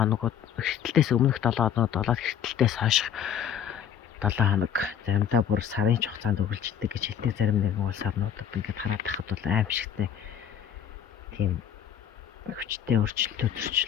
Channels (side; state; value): right; quieter; 8.9 dB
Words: хэртэлтээс өмнөх 7 хоногуд болоод хэртэлтээс хойш 7 хоног заримдаа бүр сарын хугацаанд үргэлжлэдэг гэж хэлдэг. Зарим нэгэн улс орнуудад ингээд хараад тахад бол аимшигтай тийм хүчтэй